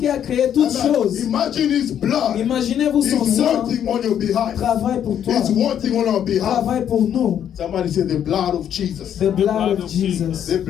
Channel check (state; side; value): quieter; right; 9.5 dB